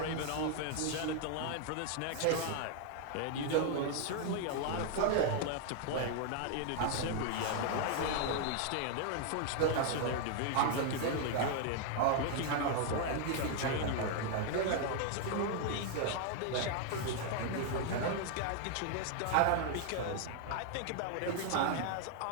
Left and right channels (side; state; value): both; different; correlation 0.00